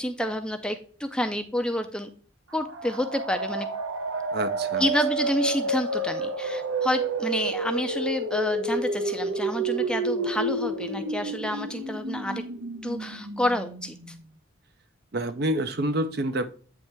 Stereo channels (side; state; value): both; normal; correlation 0.40